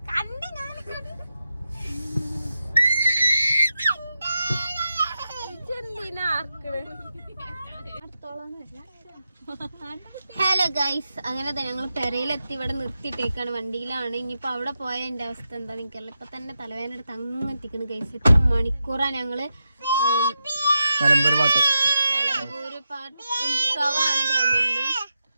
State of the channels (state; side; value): inverted; both; correlation -0.88